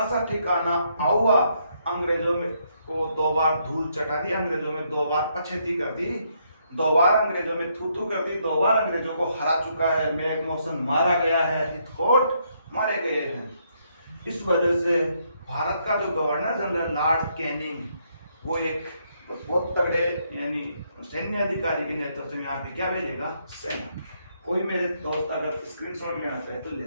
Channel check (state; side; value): inverted; both; correlation -0.74